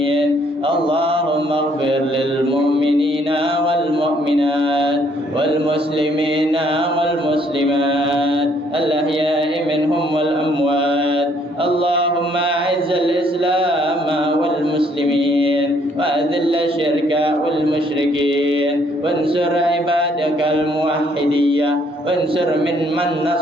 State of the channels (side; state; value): both; normal; correlation 0.66